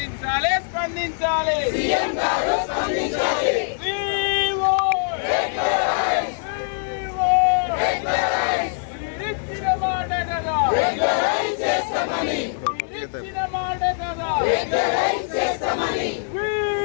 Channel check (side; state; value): right; silent; digital silence